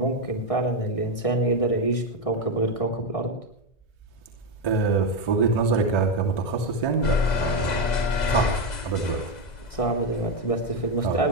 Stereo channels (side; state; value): right; late; 2.0 ms